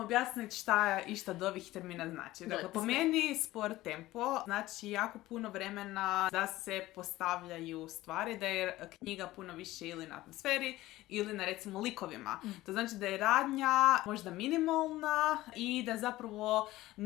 šta išta od ovih termina znači. Dakle, po meni spor tempo znači jako puno vremena da se postavljaju stvari, da je knjiga puno više ili na atmosferi ili na recimo likovima. To znači da je radnja možda minimalna i da zapravo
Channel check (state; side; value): quieter; right; 17.0 dB